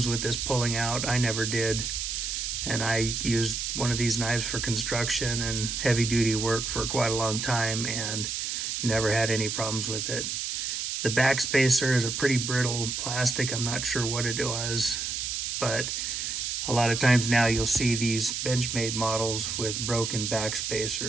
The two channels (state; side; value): noise; right; hiss, 2 dB below the sound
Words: with this pulling out. I never did. And I used one of these knives for construction and heavy duty work for quite a long time and never had any problems with it. The back spacer is a pretty brittle plastic. I'm not sure what it was, but a lot of times now you'll see these Benchmade models with broken back